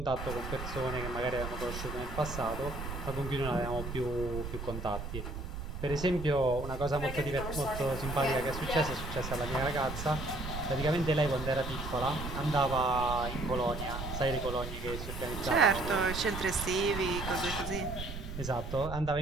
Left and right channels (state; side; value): noise; right; rumble, 7 dB below the sound